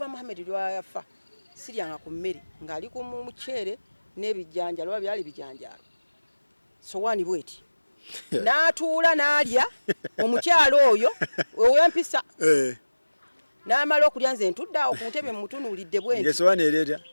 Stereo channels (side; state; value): both; inverted; correlation -1.00